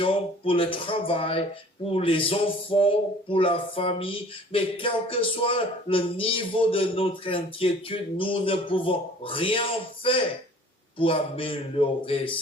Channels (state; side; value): normal; both; correlation 0.50